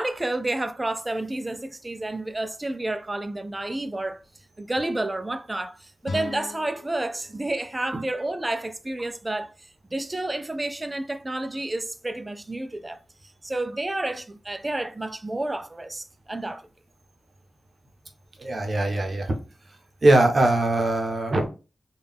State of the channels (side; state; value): both; normal; correlation 0.94